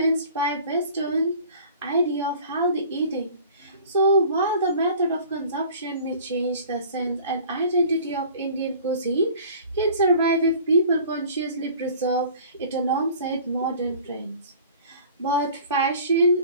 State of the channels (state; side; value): inverted; both; correlation -0.47